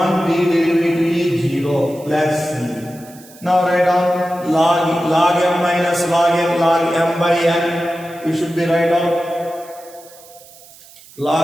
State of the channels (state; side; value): noise; right; hiss, 22 dB below the sound